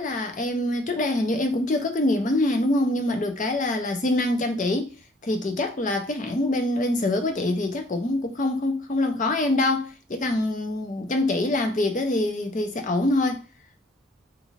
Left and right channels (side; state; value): both; normal; correlation 0.59